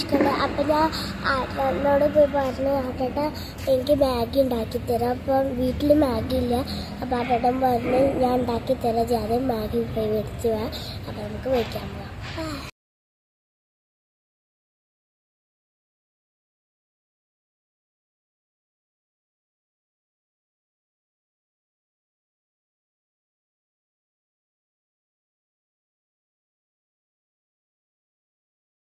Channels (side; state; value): both; identical; correlation 1.00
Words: അപ്പോൾ ഞാൻ ആട്ടനോട് പോയി പറഞ്ഞു, ആട്ടേട്ട എനിക്ക് മാഗി ഉണ്ടാക്കി തരാം. അപ്പം വീട്ടിൽ മാഗി ഇല്ല. അപ്പോൾ ആട്ടേട്ടൻ പറഞ്ഞ് ഞാൻ ഉണ്ടാക്കി തരാം, ജാതെ മാഗി പോയി മേടിച്ച് പോവാം. അപ്പോൾ നമുക്ക് മേടിക്കാൻ പോവാം.